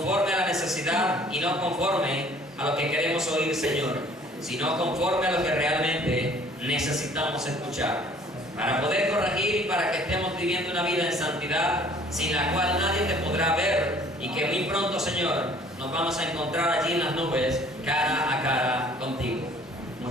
a la necesidad y no conforme a lo que queremos oír, Señor, sino conforme a lo que realmente necesitamos escuchar, para poder corregir y para que estemos viviendo una vida en santidad, sin la cual nadie te podrá ver, y que muy pronto, Señor, nos vamos a encontrar allí en las nubes, cara a cara contigo.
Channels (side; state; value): both; normal; correlation 0.55